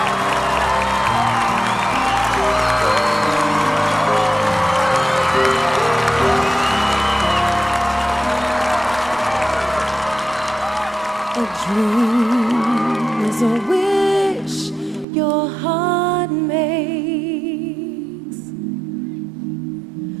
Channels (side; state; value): left; drops out; at 15.1 s